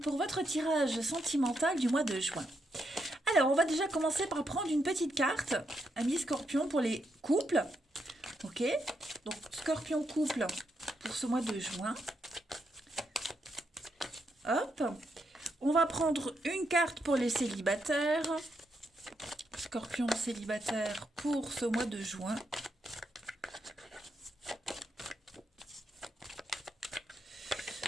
votre tirage sentimental du mois de juin. Alors, on va déjà commencer par prendre une petite carte, Amis Scorpion, pour les couples. Ok, donc Scorpion couple pour ce mois de juin. Hop, on va prendre une carte pour les célibataires. Scorpion célibataire pour ce mois de juin.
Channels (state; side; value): normal; both; correlation 0.80